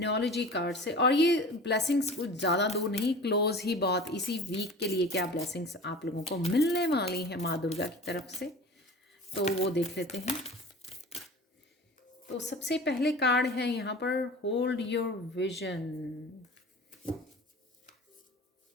कार्ड से। और ये ब्लेसिंग्स कुछ ज़्यादा दूर नहीं, क्लोज ही बहुत, इसी वीक के लिए क्या ब्लेसिंग्स आप लोगों को मिलने वाली हैं माँ दुर्गा की तरफ से, तो वो देख लेते हैं। तो सबसे पहले कार्ड है यहाँ पर होल्ड योर विजन।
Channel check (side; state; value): both; normal; correlation 0.38